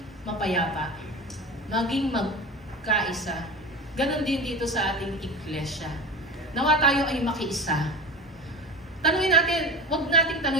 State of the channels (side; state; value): both; normal; correlation 0.28